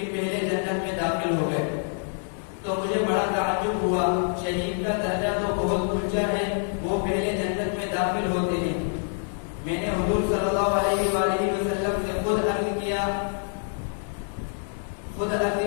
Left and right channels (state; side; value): silent; right; digital silence